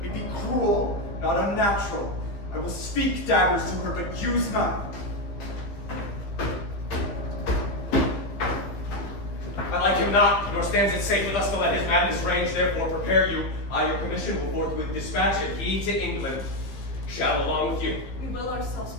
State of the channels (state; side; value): late; right; 15 ms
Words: me be cruel, not unnatural. I will speak daggers to her, but use none. I like him not, nor stands it safe with us to let his madness range. Therefore prepare you. I your commission will forthwith dispatch, and he to England shall along with you. We will ourselves